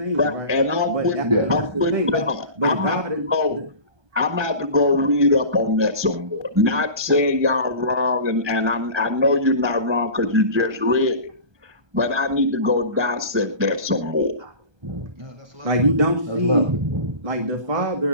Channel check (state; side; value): late; left; 1.2 ms